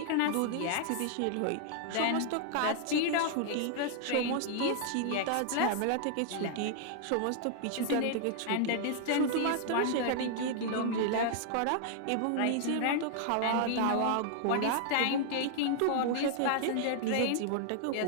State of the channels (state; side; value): different; both; correlation -0.01